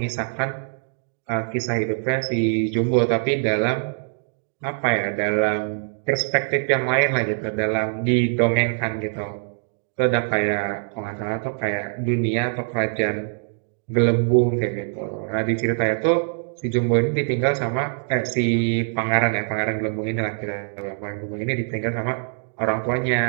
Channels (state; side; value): silent; left; digital silence